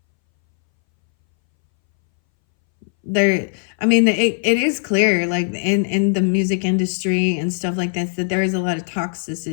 is clear, like in the music industry and stuff like this, that there is a lot of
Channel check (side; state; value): right; silent; 63 dB below the other